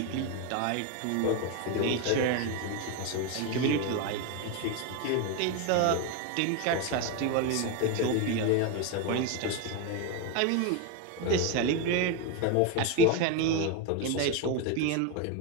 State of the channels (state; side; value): different; both; correlation 0.02